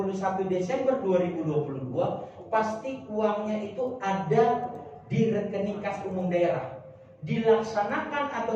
Desember 2022 pasti uangnya itu ada di rekening kas umum daerah. Dilaksanakan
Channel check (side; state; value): both; identical; correlation 1.00